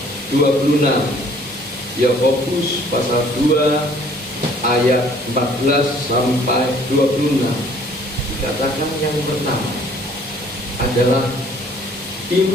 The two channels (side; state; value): both; normal; correlation 0.57